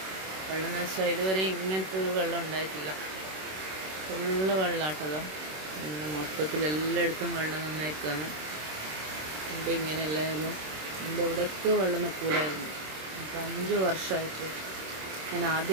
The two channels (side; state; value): left; late; 26 ms